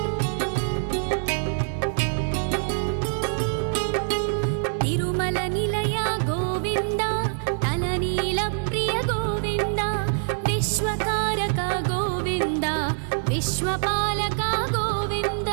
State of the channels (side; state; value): left; silent; digital silence